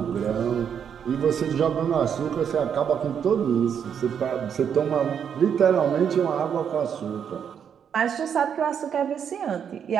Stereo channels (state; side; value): quieter; left; 7.9 dB